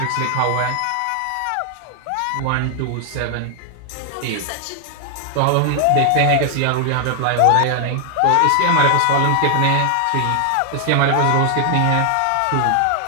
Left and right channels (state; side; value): different; both; correlation 0.00